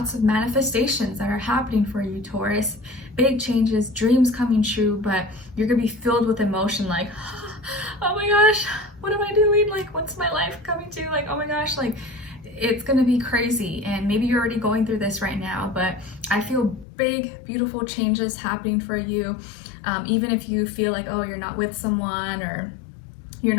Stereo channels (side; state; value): right; drops out; at 16.9 s